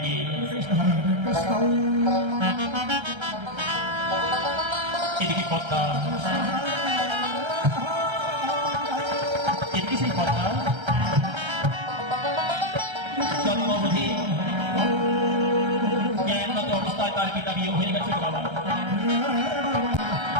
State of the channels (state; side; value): late; left; 1.3 ms